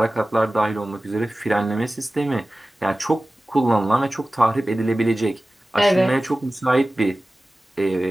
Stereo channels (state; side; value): normal; both; correlation 0.97